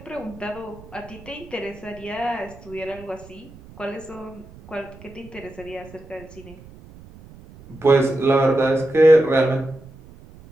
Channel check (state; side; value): noise; right; rumble, 20 dB below the sound